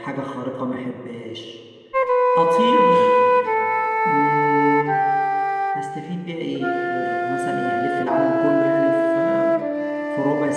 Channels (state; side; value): identical; both; correlation 1.00